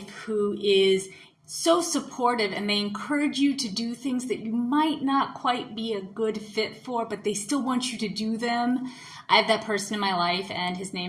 who is so supportive and they encourage you to do things that you might not quite be a good fit for, but they still want you to do them? I have that person in my life, and his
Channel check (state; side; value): identical; both; correlation 1.00